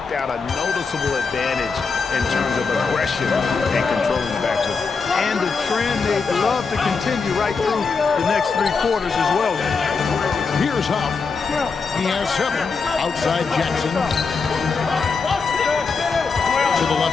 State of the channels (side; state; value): right; quieter; 4.9 dB